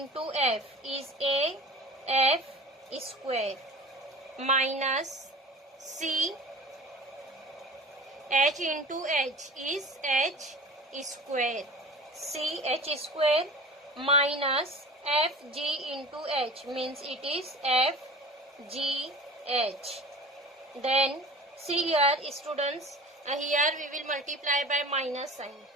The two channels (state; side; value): normal; both; correlation 0.39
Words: F is A F square minus C H into H is H square, C H square minus FG into H means it is FGH. Then see here students, here we will multiply by minus sign.